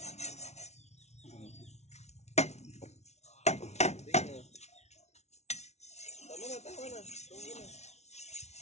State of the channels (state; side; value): late; right; 0.32 ms